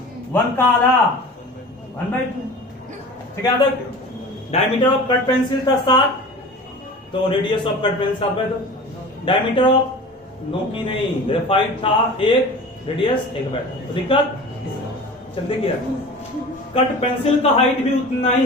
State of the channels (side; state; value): both; normal; correlation 0.37